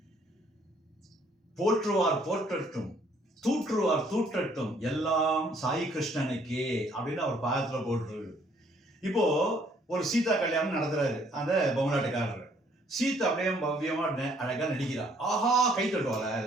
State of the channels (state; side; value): normal; both; correlation 0.64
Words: போற்றுவார் போற்றட்டும், தூற்றுவார் தூற்றட்டும், எல்லாம் சாய் கிருஷ்ணனுக்கே அப்படின்னு அவர் பாகத்துல போட்டுரு. இப்போ ஒரு சீதா கல்யாணம் நடத்துறாரு அந்த பொம்மலாட்டக்காரர். சீதா அப்படியே பவ்யமா அழகா நடிக்கிறா. ஆஹா, கை தட்டுவாள,